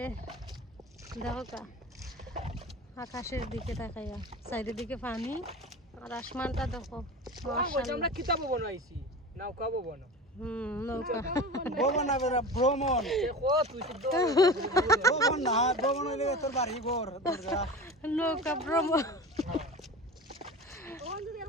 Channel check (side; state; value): both; normal; correlation 0.31